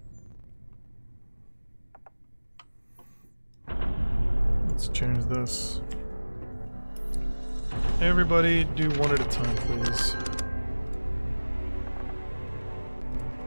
Let's change this. Everybody do one at a time, please.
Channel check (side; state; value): both; inverted; correlation -1.00